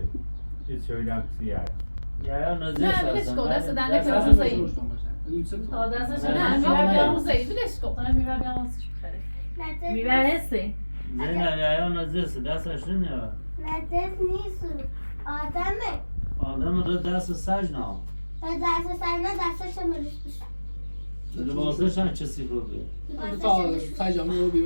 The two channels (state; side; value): inverted; both; correlation -1.00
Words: چیز شویدم کسیه یا نزد نه بلش کن دست دنده که دست روزه ای تا دستش نه میره بیا روزه ای بلش کن میره بیا واسش بخره میره هستی نه یا نزد دستش نمیاد نزد نیست آدمه آدم رو دست سج نه دست سرنا دستش مروش بشه لباسش هم چه سیفر بیه تا سجامه رو